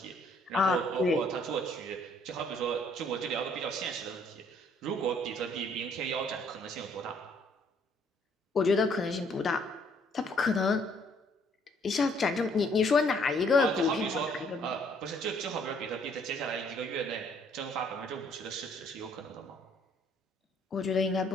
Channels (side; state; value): both; normal; correlation 0.64